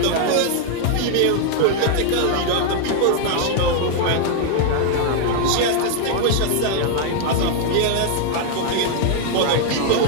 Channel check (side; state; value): both; different; correlation 0.00